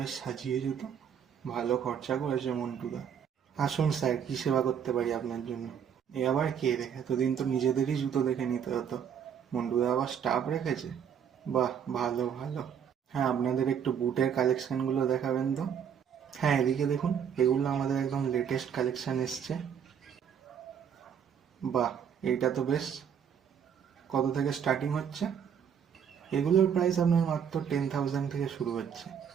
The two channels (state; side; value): quieter; left; 8.0 dB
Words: বেশ সাজিয়ে জুতো, ভালো খরচা করেছে মন্টুদা। আসুন স্যার, কি সেবা করতে পারি আপনার জন্য? এ আবার কে রে? এতদিন তো নিজেদেরই জুতো দেখে নিতে হতো, মন্টুদা আবার স্টাফ রেখেছে। বাহ, ভালো ভালো। হ্যাঁ, আপনাদের একটু বুটের কালেকশনগুলো দেখাবেন তো। হ্যাঁ, এদিকে দেখুন, এগুলো আমাদের একদম লেটেস্ট কালেকশন এসছে। বাহ, এইটা তো বেশ। কত থেকে স্টার্টিং হচ্ছে? এগুলোর প্রাইস আপনার মাত্র 10,000 থেকে শুরু হচ্ছে।